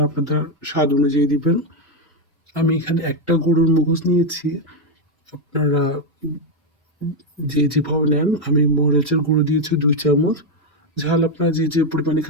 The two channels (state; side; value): normal; both; correlation 0.04